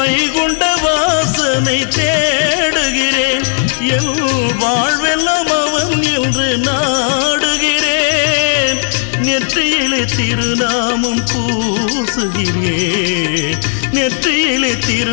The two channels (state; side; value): silent; right; digital silence